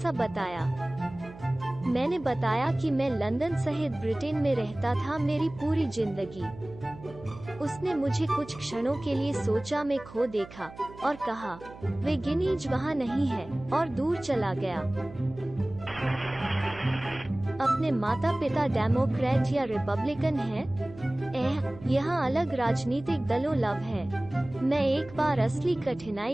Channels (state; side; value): noise; right; hum, 17 dB below the sound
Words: बताया। मैंने बताया कि मैं लंदन सहित ब्रिटेन में रहता था मेरी पूरी जिंदगी। उसने मुझे कुछ क्षणों के लिए सोचा में खो देखा और कहा, वे गिनीज वहाँ नहीं है, और दूर चला गया। अपने माता पिता डेमोक्रेट या रिपब्लिकन हैं? यहाँ अलग राजनीतिक दलों लव है। मैं एक बार असली